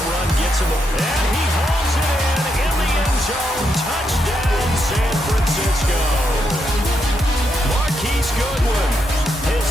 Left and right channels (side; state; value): both; normal; correlation 0.81